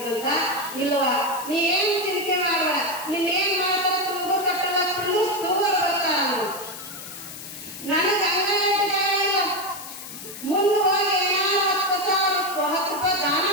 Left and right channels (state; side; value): noise; left; hiss, 12 dB below the sound